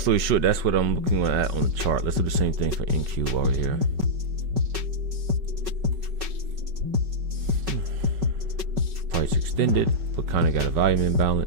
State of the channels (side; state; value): left; late; 5.3 ms